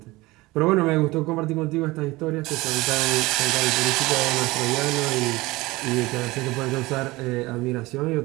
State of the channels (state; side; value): quieter; left; 20.9 dB